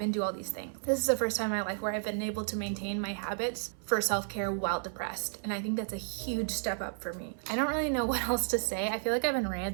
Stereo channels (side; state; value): left; silent; 56 dB below the other